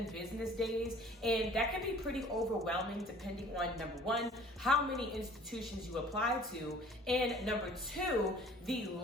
business days. And that can be pretty overwhelming depending on, number one, how many institutions you apply to, and number two, the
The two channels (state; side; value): normal; both; correlation 0.51